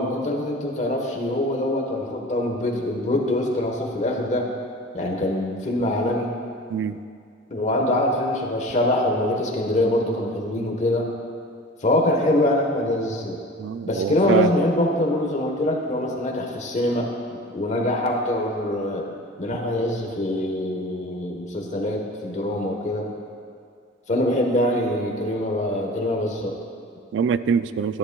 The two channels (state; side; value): normal; both; correlation 0.39